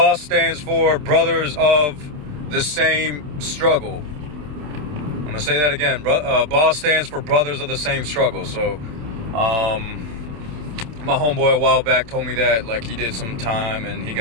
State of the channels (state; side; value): late; left; 27 ms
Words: stands for Brothers of the Same Struggle. I'm gonna say that again. BOSS stands for Brothers of the Same Struggle. So, my homeboy a while back told me that, like, he did some time and he